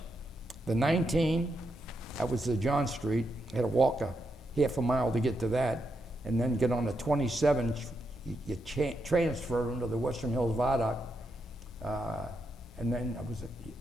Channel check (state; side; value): normal; both; correlation 0.83